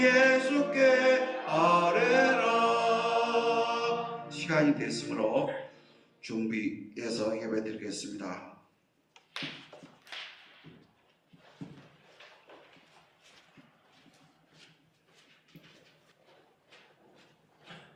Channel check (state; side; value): identical; both; correlation 1.00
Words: 아뢰라. 시간이 됐으므로 준비해서 예배드리겠습니다.